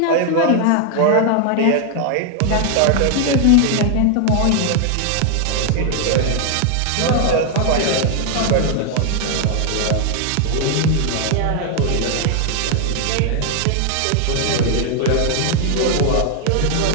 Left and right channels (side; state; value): both; different; correlation 0.00